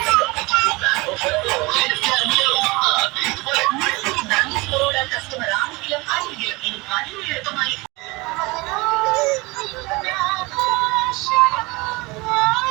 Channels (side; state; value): left; quieter; 24.2 dB